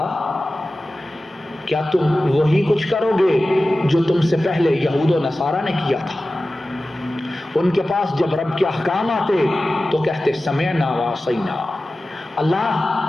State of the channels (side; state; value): both; normal; correlation 0.95